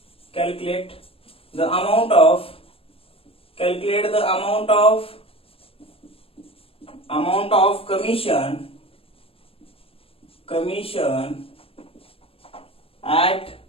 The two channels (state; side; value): late; right; 0.27 ms